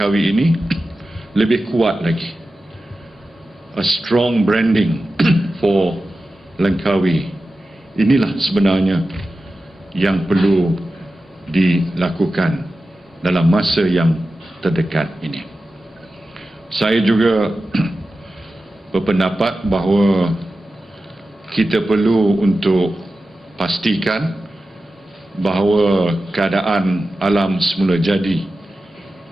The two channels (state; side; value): normal; both; correlation 0.93